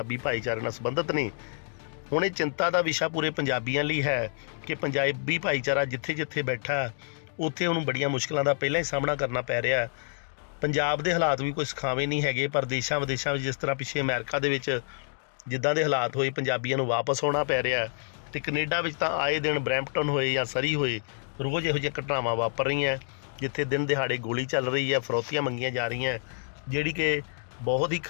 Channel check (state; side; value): silent; right; digital silence